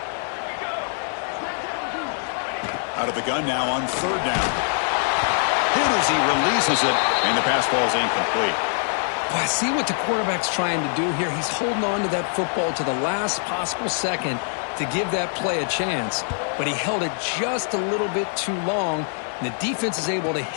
Out of the gun now on 3rd down. Hit as he releases it, and the pass ball is incomplete. Well, I see what the quarterback's trying to do here. He's holding on to that football to the last possible second to give that play a chance, but he held it just a little bit too long, And the defense is able to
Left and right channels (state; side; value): silent; right; 63 dB below the other